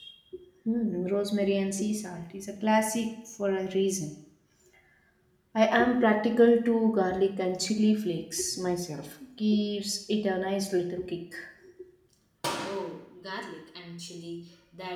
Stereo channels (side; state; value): both; identical; correlation 1.00